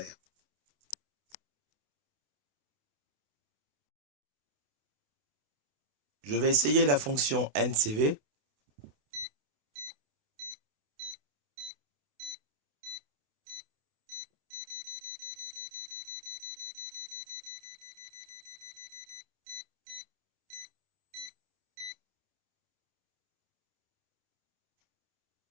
Je vais essayer la fonction NCV.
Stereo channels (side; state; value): left; late; 28 ms